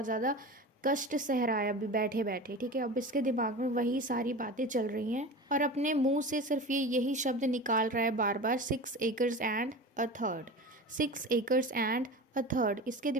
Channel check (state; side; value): normal; both; correlation 0.32